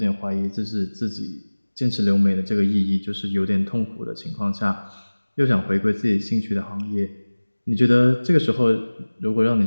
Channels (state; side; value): inverted; both; correlation -1.00